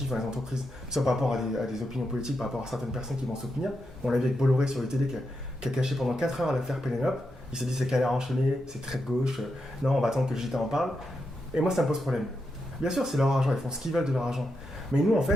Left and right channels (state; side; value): normal; both; correlation 0.85